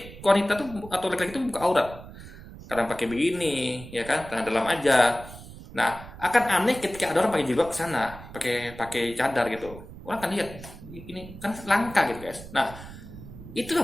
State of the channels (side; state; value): right; noise; rumble, 15 dB below the sound